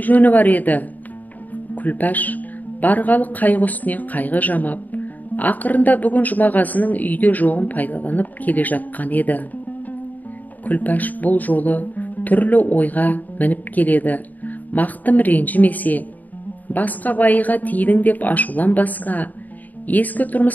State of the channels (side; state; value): right; late; 0.081 ms